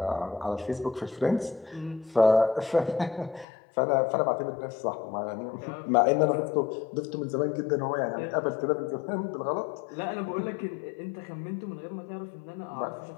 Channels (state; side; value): drops out; right; at 3.5 s